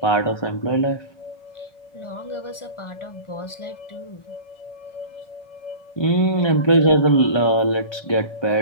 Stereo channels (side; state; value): right; late; 1.4 ms